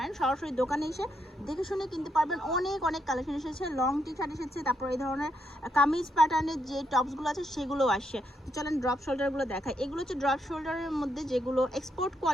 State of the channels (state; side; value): normal; both; correlation 0.79